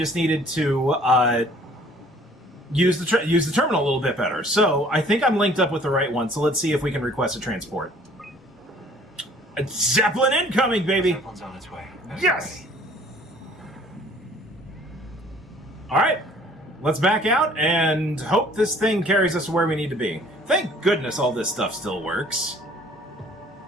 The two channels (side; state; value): both; normal; correlation 0.55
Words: needed to use the terminal a little bit better. So I think I'm linked up with the right one. So let's see if we can request a transport. A Zeppelin incoming, baby. Zeppelin's on its way. Yes. All right. Let's back out and hope this thing carries us to where we need to be. Thank goodness all this stuff still works.